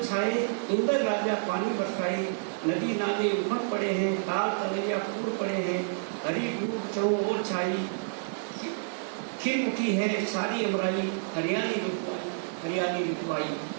छाए, इंद्र राजा पानी बरसाए, नदी नाले उमड़ पड़े हैं, ताल तलैया फूल पड़े हैं, हरी धूप चौं ओर छाई, खिल उठी है सारी अमराई, हरियाली ऋतुआई हरियाली ऋतुआई।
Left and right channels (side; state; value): left; silent; digital silence